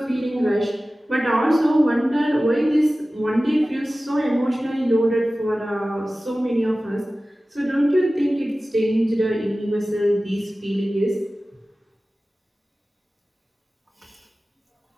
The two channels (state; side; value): normal; both; correlation 0.96